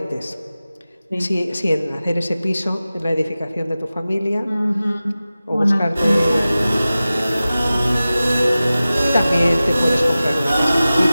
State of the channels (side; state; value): both; inverted; correlation -0.96